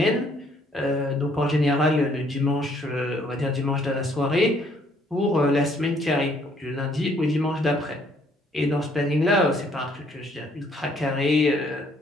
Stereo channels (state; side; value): normal; both; correlation 0.65